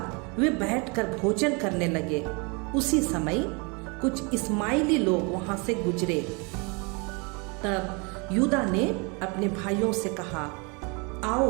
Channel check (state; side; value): quieter; left; 31.0 dB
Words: वे बैठकर भोजन करने लगे। उसी समय कुछ इस्माइली लोग वहां से गुजरे। तब यूदा ने अपने भाइयों से कहा,